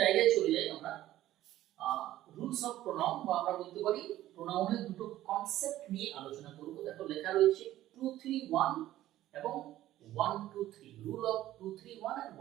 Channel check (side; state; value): left; quieter; 14.2 dB